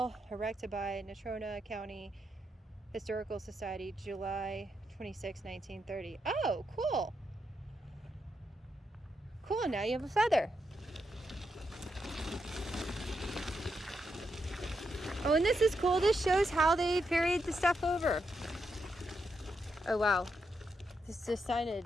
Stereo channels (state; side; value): normal; both; correlation 0.83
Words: erected by Natrona County Historical Society, July 26, 1930. Oh, cool. Cool, now you have a feather. Oh, and this is cool. This shows how they ferried the stuff over. Oh, wow. This is